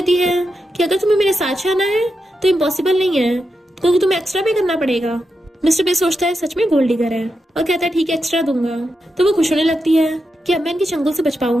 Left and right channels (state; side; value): normal; both; correlation 0.87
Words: है कि अगर तुम्हें मेरे साथ जाना है तो इम्पॉसिबल नहीं है, क्योंकि तुम्हें एक्स्ट्रा पे करना पड़ेगा। मिस्टर पे सोचता है सच में गोल्ड डिगर है और कहता है ठीक है एक्स्ट्रा दूंगा। तो वो खुश होने लगती है कि अब मैं इनके चंगुल से बच